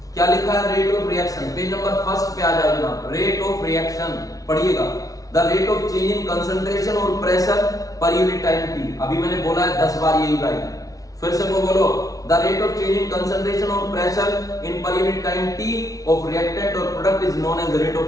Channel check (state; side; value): late; right; 0.18 ms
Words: क्या लिखा है? Rate of reaction, page number 1 पे आ जाओ जनाब। रेट ऑफ रिएक्शन पढ़िएगा, the rate of change in concentration और pressure per unit time t. अभी मैंने बोला है 10 बार यही लाइन, फिर से वो बोलो, the rate of change in concentration और pressure in per unit time t of reactant और product is known as rate